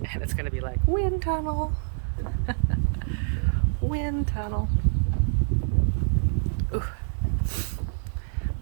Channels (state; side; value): silent; left; digital silence